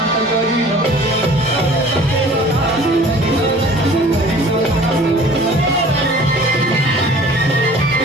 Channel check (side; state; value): both; normal; correlation 0.48